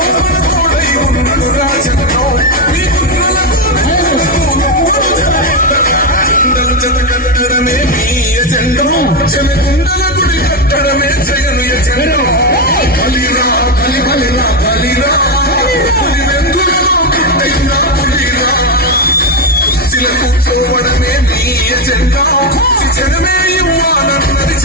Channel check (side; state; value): both; normal; correlation 0.08